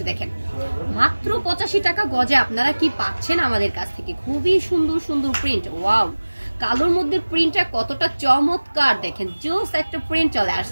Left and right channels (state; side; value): inverted; both; correlation -1.00